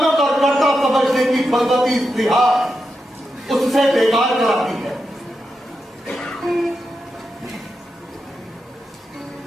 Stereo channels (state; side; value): normal; both; correlation 0.87